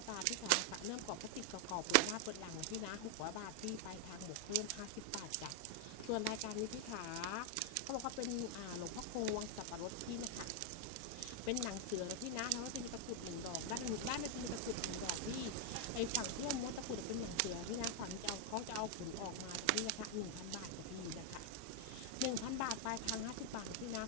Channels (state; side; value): different; both; correlation 0.00